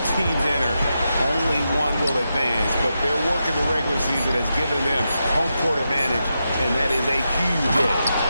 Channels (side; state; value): both; inverted; correlation -0.87